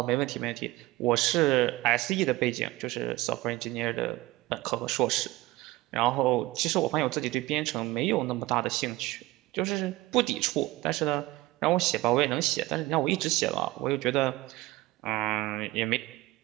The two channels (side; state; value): left; quieter; 18.8 dB